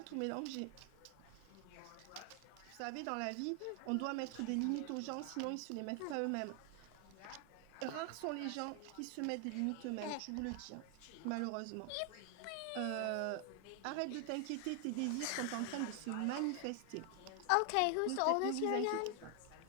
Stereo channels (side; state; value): both; different; correlation 0.00